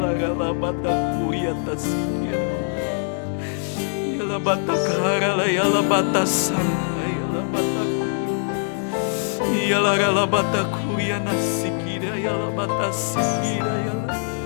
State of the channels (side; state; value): right; silent; digital silence